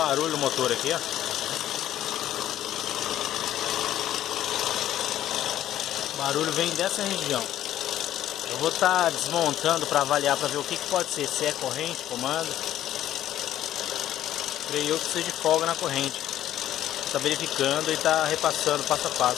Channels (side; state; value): right; quieter; 12.3 dB